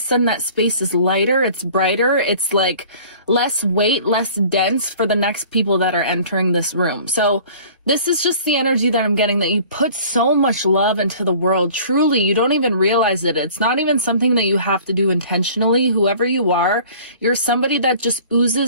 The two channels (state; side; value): inverted; both; correlation -0.48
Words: that space is lighter, it's brighter, it's like less weight, less dense for the next people that are entering this room. So this is just the energy that I'm getting, that you put so much love into the world. Truly, you don't even realize it. It's not even something that you have to do intentionally. Whoever you are, you're somebody that just